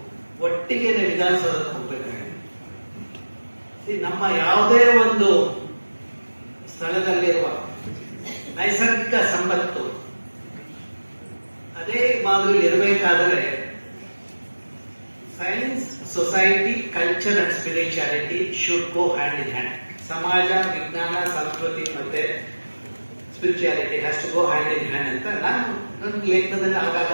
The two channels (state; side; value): inverted; both; correlation -1.00